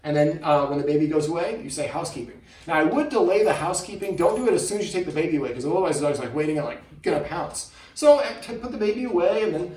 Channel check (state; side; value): identical; both; correlation 1.00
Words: And then when the baby goes away, you say housekeeping. Now, I would delay the housekeeping. Don't do it as soon as you take the baby away, because otherwise the dog's like waiting and like gonna pounce. So put the baby away and then